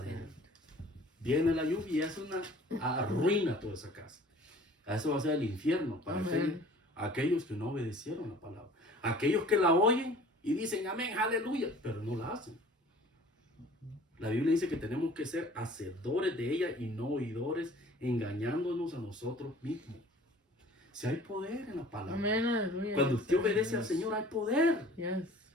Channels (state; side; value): normal; both; correlation 0.48